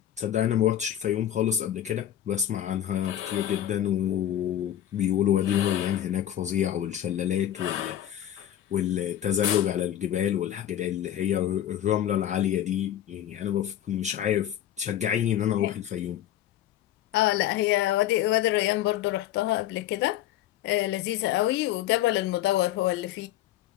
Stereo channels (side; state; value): right; quieter; 11.7 dB